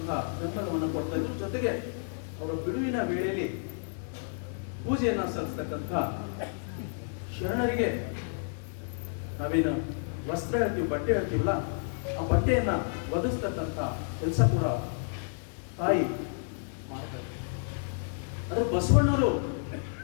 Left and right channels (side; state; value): right; silent; digital silence